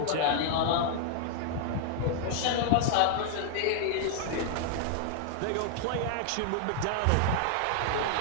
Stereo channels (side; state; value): both; different; correlation -0.01